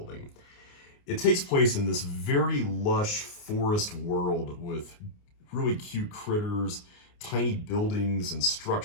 It takes place in this very lush forest world with really cute critters, tiny buildings and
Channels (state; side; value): late; right; 29 ms